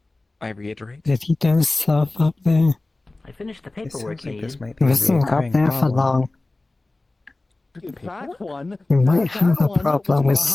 I reiterate. Did he do stuff up there? I finished the It paperwork, sounds like this Aiden. might He be a wasn't up recurring there for problem. long. That one. You might that have a one problem with was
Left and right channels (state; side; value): quieter; right; 3.0 dB